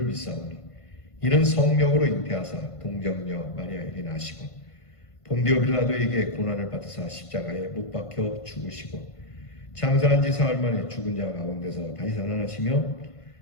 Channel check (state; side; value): late; right; 1.5 ms